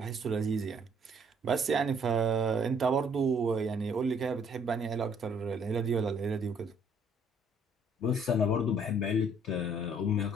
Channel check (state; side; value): normal; both; correlation 0.63